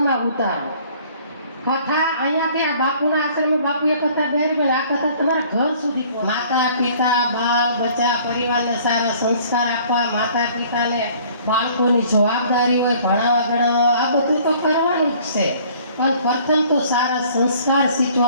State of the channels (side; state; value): both; inverted; correlation -0.55